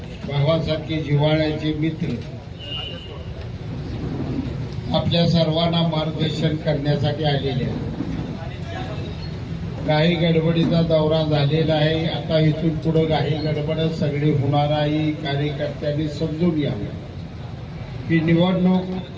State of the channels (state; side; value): identical; both; correlation 1.00